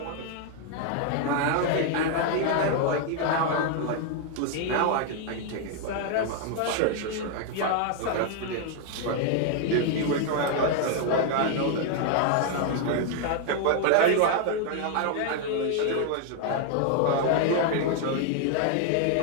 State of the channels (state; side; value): different; both; correlation 0.00